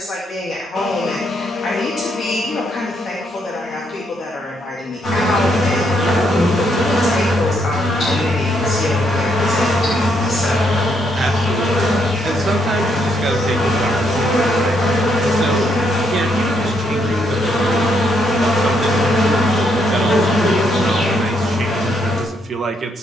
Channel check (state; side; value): normal; both; correlation 0.75